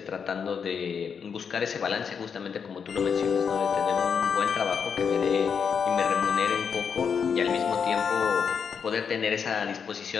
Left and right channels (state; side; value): quieter; right; 6.6 dB